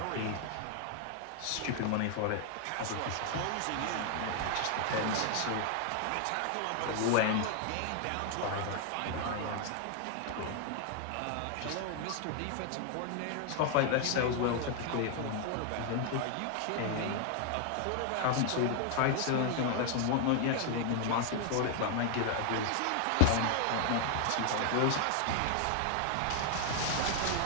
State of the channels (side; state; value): both; different; correlation 0.00